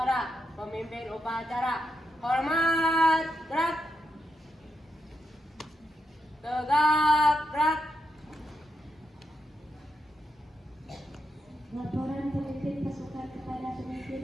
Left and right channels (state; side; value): normal; both; correlation 0.83